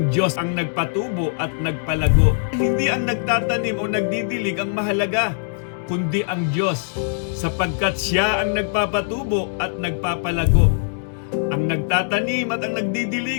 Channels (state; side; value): silent; right; digital silence